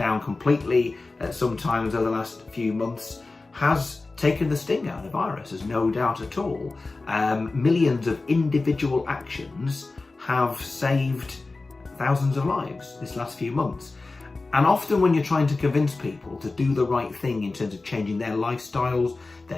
completely sometimes over the last few months, has taken the sting out of the virus, there's no doubt at all. Millions of individual actions have saved thousands of lives this last few months. And often when you're trying to convince people to do the right thing in terms of changing their lifestyles,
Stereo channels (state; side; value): quieter; right; 3.5 dB